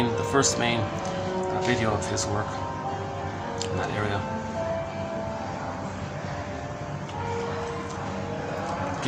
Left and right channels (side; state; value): both; identical; correlation 1.00